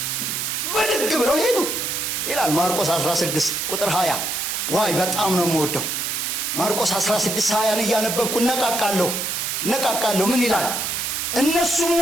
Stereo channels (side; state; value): right; noise; hiss, 1 dB below the sound